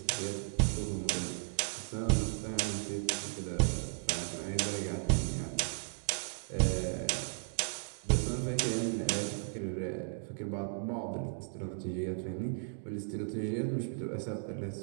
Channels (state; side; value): silent; left; digital silence